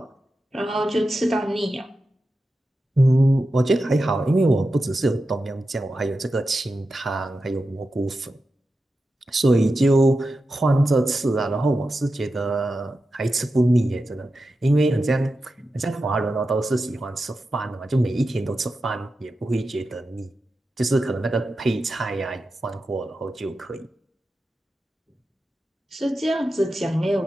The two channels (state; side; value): normal; both; correlation 0.91